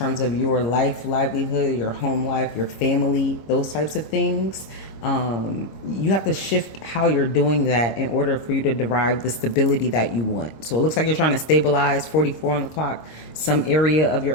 of your life, livelihood, your home life, your family, those types of things, you have to shift how you're doing that in order for you to derive the stability that you want. So it looks like you're trying to stabilize 44 on the clock, some area of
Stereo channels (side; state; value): right; late; 25 ms